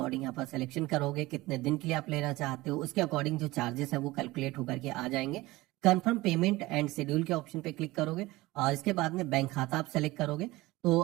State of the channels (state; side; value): quieter; left; 19.7 dB